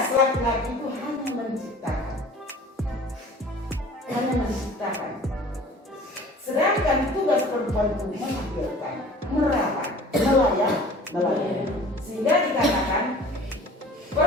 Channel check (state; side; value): normal; both; correlation 0.45